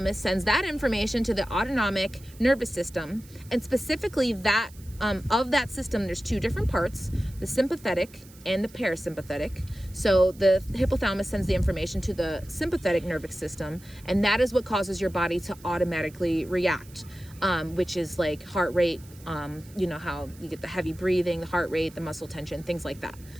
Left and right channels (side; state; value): right; noise; hiss, 23 dB below the sound